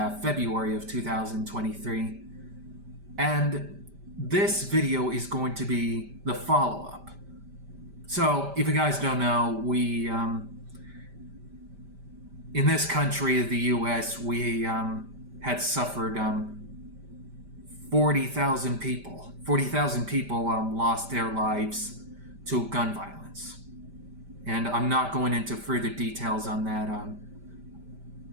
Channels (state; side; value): late; left; 5.1 ms